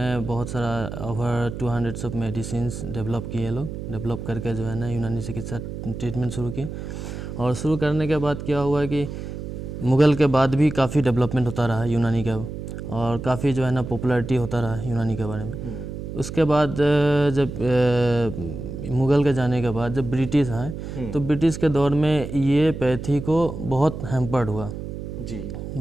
बहुत सारा ओवर 200 ऑफ मेडिसिन्स डेवलप किए, लोग डेवलप करके जो है ना यूनानी चिकित्सा ट्रीटमेंट शुरू किए। और शुरू करने के बाद क्या हुआ कि मुग़ल के बाद भी काफ़ी डेवलपमेंट होता रहा यूनानी का, और काफ़ी जो है ना पॉपुलैरिटी होता रहा यूनानी के बारे में। उसके बाद जब मुग़ल के जाने के बाद जब ब्रिटिश आए तो ब्रिटिश के दौर में ये पैथी को बहुत हैम्पर्ड हुआ जी,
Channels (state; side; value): noise; right; hum, 8 dB below the sound